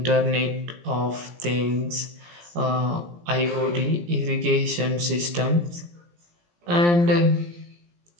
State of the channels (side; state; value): left; late; 17 ms